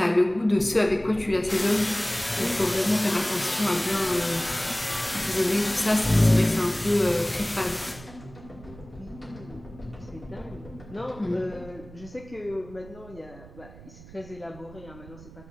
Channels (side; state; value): right; noise; rumble, 19 dB below the sound